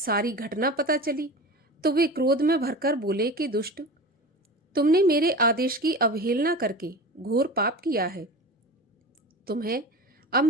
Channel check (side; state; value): both; normal; correlation 0.32